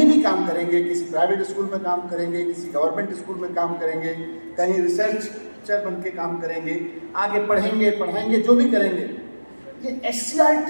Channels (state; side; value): inverted; both; correlation -1.00